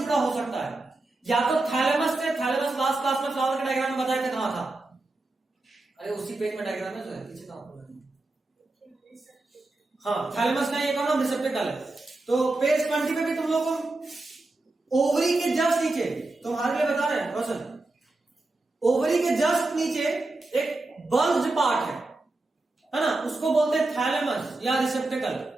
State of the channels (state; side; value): quieter; left; 3.0 dB